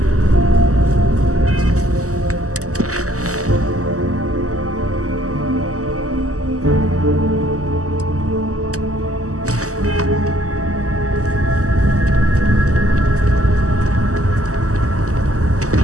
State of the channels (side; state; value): left; late; 0.66 ms